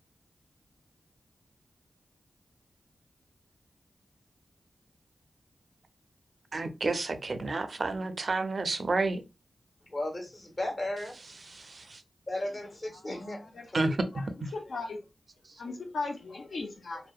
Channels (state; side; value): normal; both; correlation 0.93